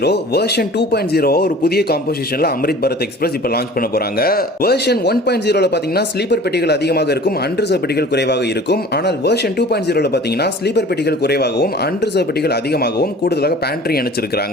வெர்ஷன் 2.0 ஒரு புதிய காம்போசிஷன்ல அம்ரித் பாரத் எக்ஸ்பிரஸ் இப்ப லான்ச் பண்ண போறாங்க. வெர்ஷன் 1.0ல பாத்தீங்கன்னா ஸ்லீப்பர் பெட்டிகள் அதிகமாக இருக்கும், அன்ரிசர்வ் பெட்டிகள் குறைவாக இருக்கும். ஆனால் வெர்ஷன் 2.0ல பாத்தீங்கன்னா ஸ்லீப்பர் பெட்டிகள் குறைவாகவும் அன்ரிசர்வ் பெட்டிகள் அதிகமாகவும் கூடுதலாக பேண்ட்ரி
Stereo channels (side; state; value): both; normal; correlation 0.44